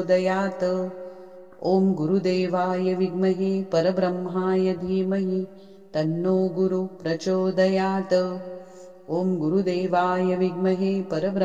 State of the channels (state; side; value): identical; both; correlation 1.00